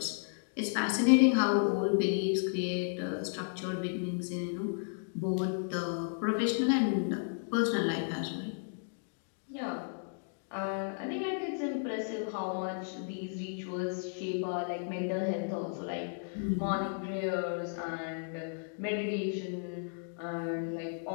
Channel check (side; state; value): right; silent; digital silence